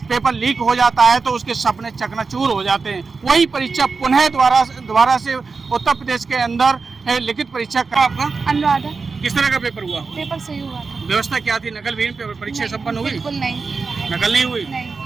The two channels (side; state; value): left; quieter; 4.5 dB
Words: पेपर लीक हो जाता है तो उसके सपने चकनाचूर हो जाते हैं। वही परीक्षा पुनः दोबारा से उत्तर प्रदेश के अंदर लिखित परीक्षा का आपका अनुराधा। किस तरह का पेपर हुआ? पेपर सही हुआ था। व्यवस्था क्या थी? नकल विहीन परीक्षा संपन्न हुई? बिल्कुल नहीं। नकल नहीं हुई?